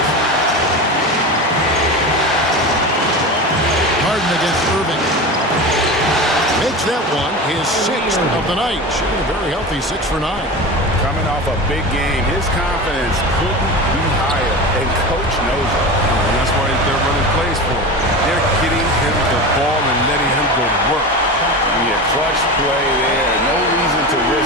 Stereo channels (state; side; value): normal; both; correlation 0.27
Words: Harden against Irving. Makes that one his 6th of the night. Shooting a very healthy 6 for 9. Coming off a big game, his confidence couldn't be higher, and Coach knows it. And that's why they're running plays for him. They're getting him the ball and letting him go to work. Yeah, clutch play there. No reason to